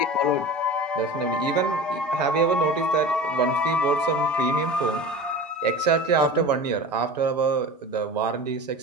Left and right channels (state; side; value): normal; both; correlation 0.34